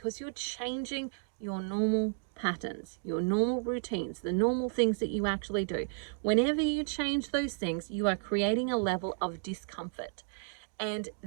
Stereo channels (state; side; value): silent; left; digital silence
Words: you're changing your normal patterns, your normal routines, the normal things that you actually do. Whenever you change those things, you are creating a level of discomfort. And